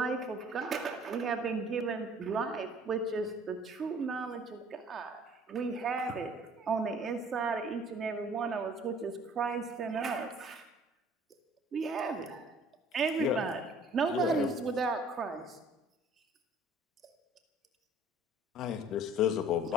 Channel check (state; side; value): normal; both; correlation 0.53